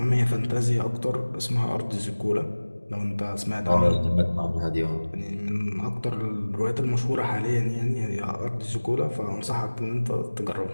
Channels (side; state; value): both; inverted; correlation -1.00